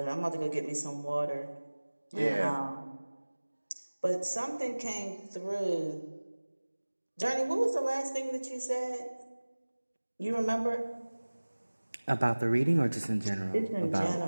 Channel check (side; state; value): both; inverted; correlation -1.00